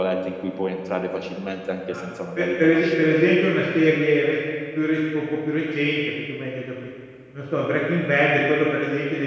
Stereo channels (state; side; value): identical; both; correlation 1.00